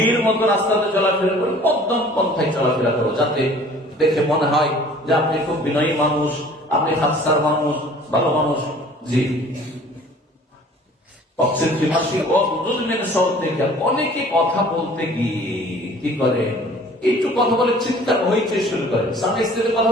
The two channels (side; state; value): both; normal; correlation 0.50